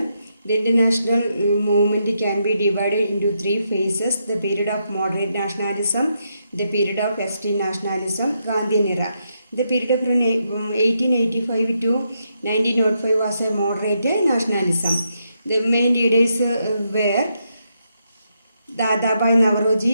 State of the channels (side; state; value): both; inverted; correlation -0.80